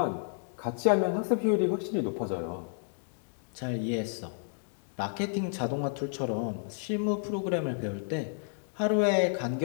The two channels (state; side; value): silent; right; digital silence